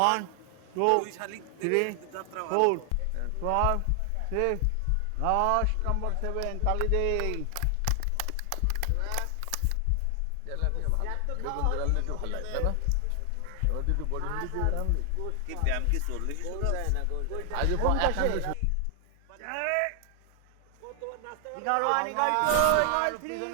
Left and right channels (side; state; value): both; different; correlation 0.00